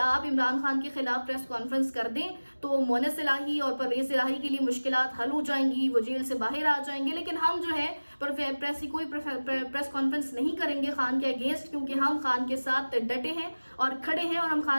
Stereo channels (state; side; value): inverted; both; correlation -1.00